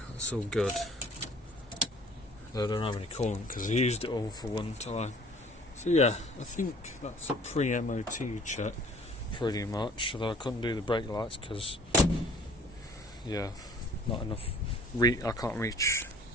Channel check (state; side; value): normal; both; correlation 0.52